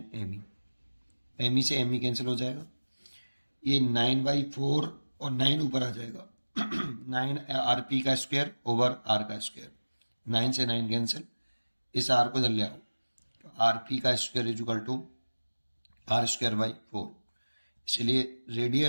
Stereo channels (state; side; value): inverted; both; correlation -1.00